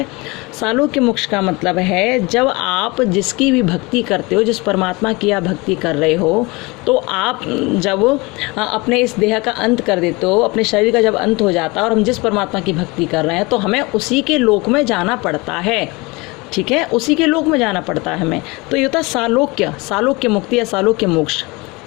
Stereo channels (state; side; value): quieter; right; 24.9 dB